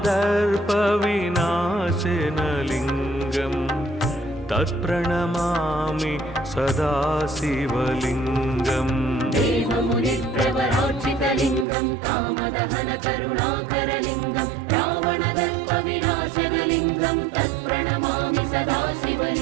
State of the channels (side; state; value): left; drops out; at 11.7 s